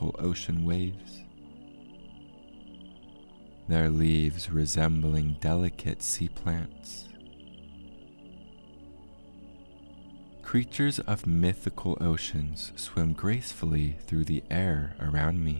ocean waves, their leaves resembling delicate sea plants. Creatures of mythical oceans swim gracefully through the air around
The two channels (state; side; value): inverted; both; correlation -1.00